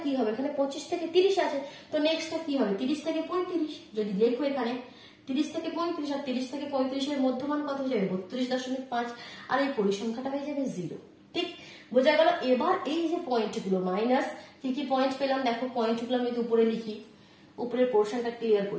কি হবে, এখানে 25 থেকে 30 আছে, তো নেক্সটটা কি হবে 30 থেকে 35, যদি লেখো এখানে 30 থেকে 35, আর 30 থেকে 35 এর মধ্যমান কত হয়ে যাবে 32.5, আর এই পরিসংখ্যাটা হয়ে যাবে 0। ঠিক বোঝা গেল। এবার এই যে পয়েন্টগুলো মাইনাস, কি কি পয়েন্ট পেলাম দেখো, পয়েন্টগুলো আমি যদি উপরে লিখি, উপরের পোর্শনটা ক্লিয়ার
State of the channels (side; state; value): both; identical; correlation 1.00